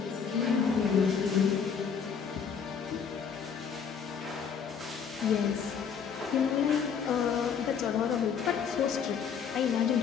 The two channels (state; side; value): quieter; right; 6.9 dB